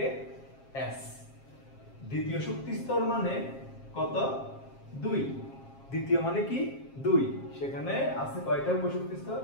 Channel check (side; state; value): right; late; 7.5 ms